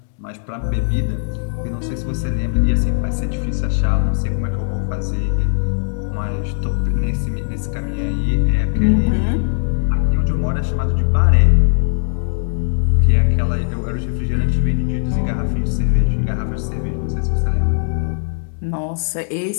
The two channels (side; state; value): right; silent; 67 dB below the other